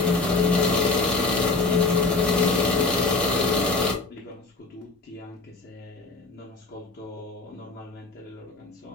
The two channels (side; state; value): right; quieter; 3.7 dB